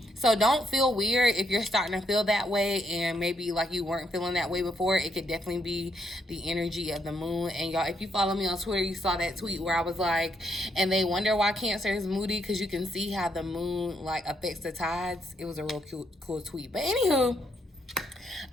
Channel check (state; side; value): normal; both; correlation 0.75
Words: so don't feel weird if you're starting to feel that way, and maybe like you weren't feeling that way before. It could definitely be the energy of the moon. And y'all, if you follow me on Twitter, you saw that tweet where I was like, and they wonder why Cancer is moody, because you can see how the moon like affects the tides. It was a real cool tweet. But anywho,